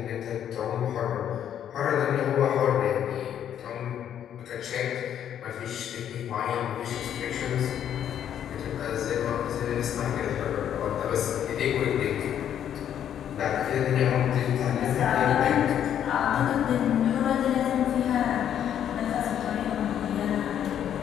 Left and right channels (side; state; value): right; quieter; 9.8 dB